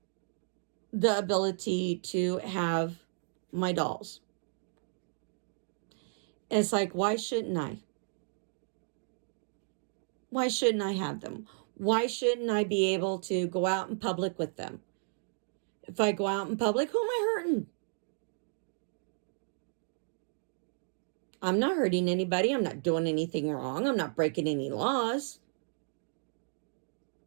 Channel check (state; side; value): silent; left; digital silence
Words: the ability to have my dolls. It's like, why shouldn't I? Why shouldn't I have them? Why shouldn't I be able to go out in public with them? If I go out in public, who am I hurting? I'm not hurting anybody. I'm not doing anything wrong. I'm not breaking any laws.